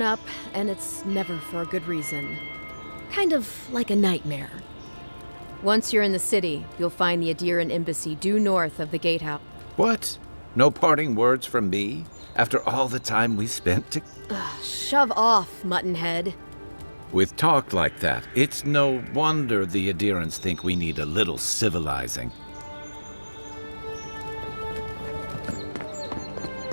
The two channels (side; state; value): both; inverted; correlation -1.00